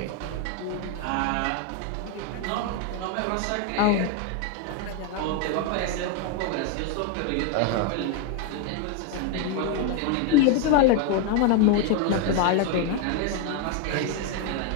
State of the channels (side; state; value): both; different; correlation 0.01